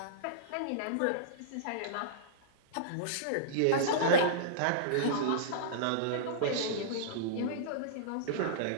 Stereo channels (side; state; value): both; different; correlation -0.03